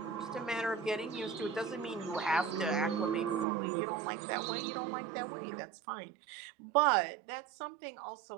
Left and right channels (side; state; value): left; drops out; at 3.5 s